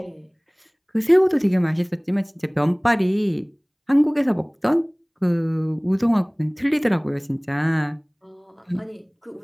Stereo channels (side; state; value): both; identical; correlation 1.00